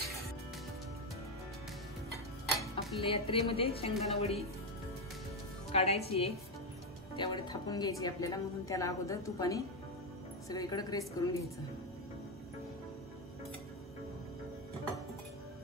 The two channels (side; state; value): both; normal; correlation 0.08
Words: आपल्या या ट्रेमध्ये शेंगदाणा वडी काढायची आहे, त्यावर थापून घ्यायची आपल्याला, म्हणून त्याला अगोदर तुपाने सगळीकडे ग्रेस करून घ्यायचं।